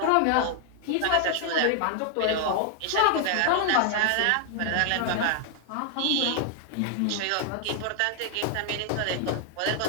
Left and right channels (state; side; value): different; both; correlation 0.00